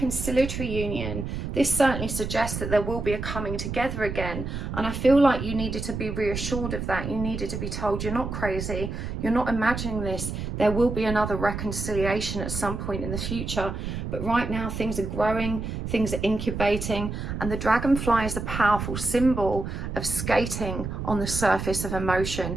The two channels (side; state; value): right; noise; rumble, 5 dB below the sound